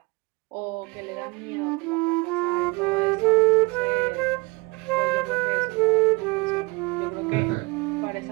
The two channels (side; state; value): left; quieter; 26.3 dB